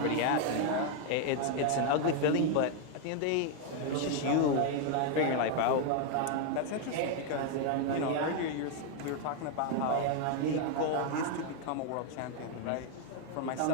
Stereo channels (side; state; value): both; different; correlation 0.00